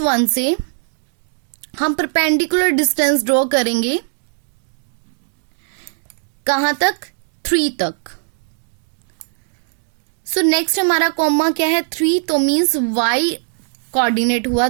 से हम परपेंडिकुलर डिस्टेंस ड्रॉ करेंगे कहां तक, 3 तक। सो नेक्स्ट हमारा कॉमा क्या है, 3, तो मीन्स y कोऑर्डिनेट हुआ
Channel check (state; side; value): silent; left; digital silence